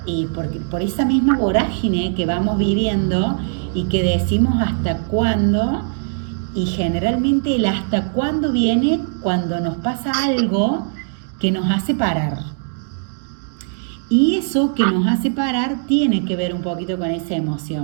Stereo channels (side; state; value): left; silent; digital silence